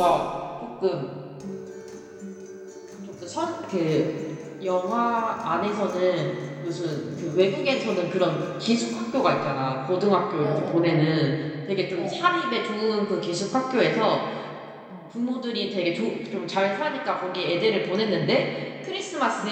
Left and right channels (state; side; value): identical; both; correlation 1.00